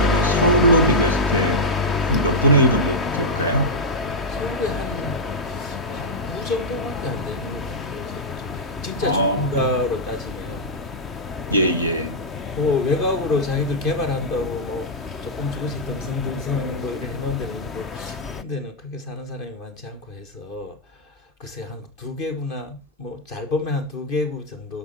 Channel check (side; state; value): both; normal; correlation -0.05